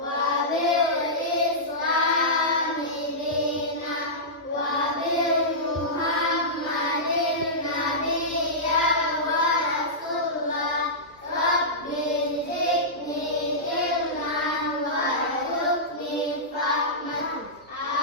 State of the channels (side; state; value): both; normal; correlation -0.14